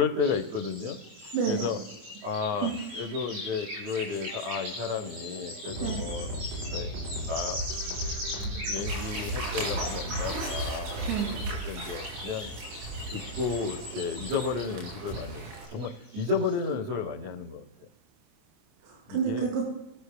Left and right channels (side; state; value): left; late; 28 ms